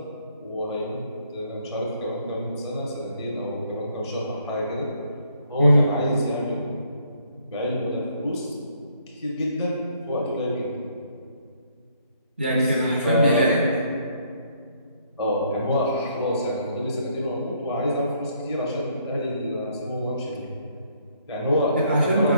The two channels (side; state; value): both; inverted; correlation -0.68